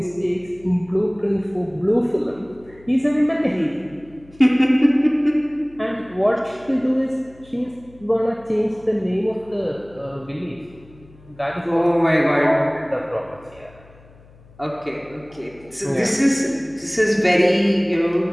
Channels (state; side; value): noise; left; hum, 25 dB below the sound